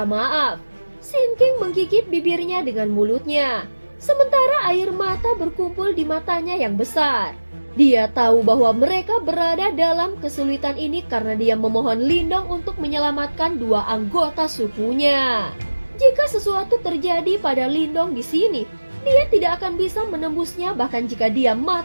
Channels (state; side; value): inverted; both; correlation -1.00